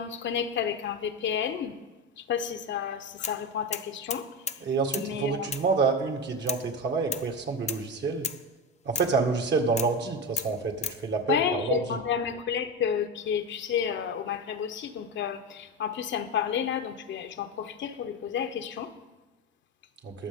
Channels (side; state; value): both; normal; correlation 0.18